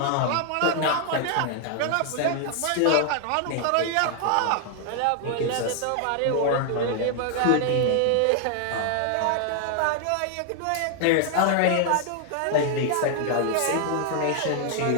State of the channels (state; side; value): different; both; correlation 0.00